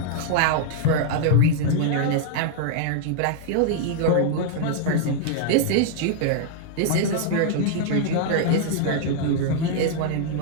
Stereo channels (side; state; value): both; different; correlation -0.01